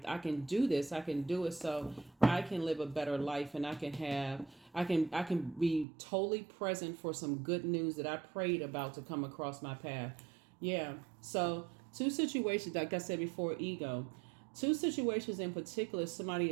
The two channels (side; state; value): left; drops out; at 5.9 s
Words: I can do this. I can do it so I can live a better life, and I can be totally present for some good news that I prayed about to come across my path. Yeah. So two situations, like I said before, ego. Two situations in particular, somebody